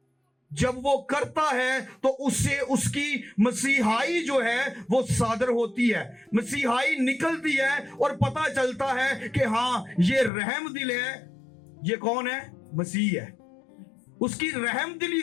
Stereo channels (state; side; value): drops out; right; at 10.3 s